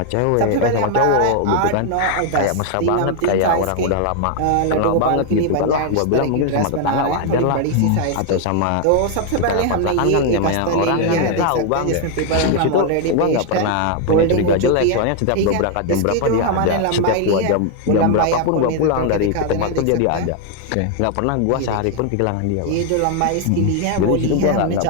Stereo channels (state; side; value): different; both; correlation 0.00